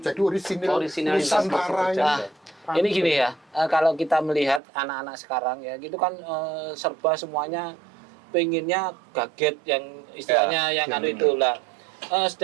Jadi Orisinalitas Nusantara ini. Nah, ini gini ya, kalau kita melihat anak-anak sekarang ya, gitu kan serba semuanya pengennya gadget yang istilahnya yang anu itu lah.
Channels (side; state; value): left; drops out; at 4.6 s